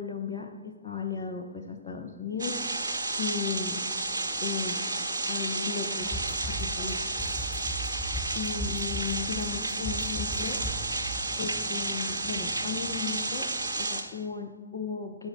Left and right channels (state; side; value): inverted; both; correlation -0.51